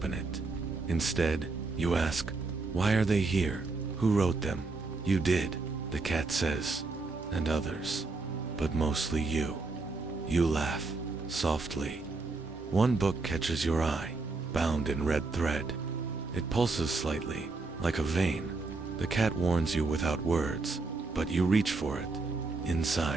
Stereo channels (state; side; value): quieter; left; 3.8 dB